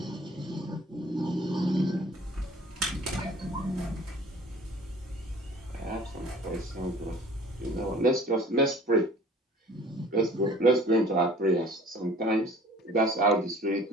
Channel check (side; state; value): both; normal; correlation 0.49